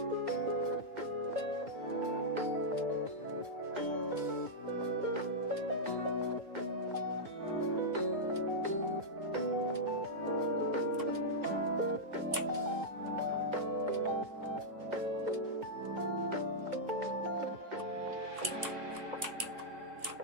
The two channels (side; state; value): left; late; 2.2 ms